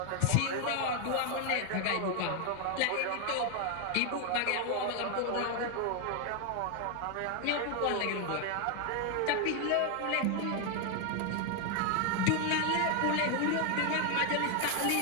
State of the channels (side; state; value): both; different; correlation 0.01